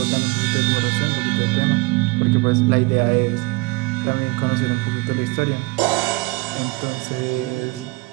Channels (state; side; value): quieter; left; 24.4 dB